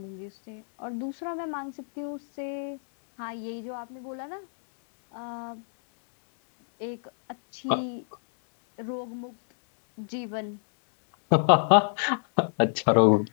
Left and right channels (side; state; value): right; silent; digital silence